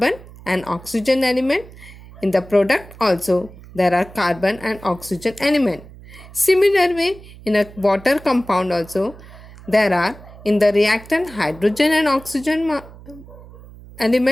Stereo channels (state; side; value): noise; right; hum, 19 dB below the sound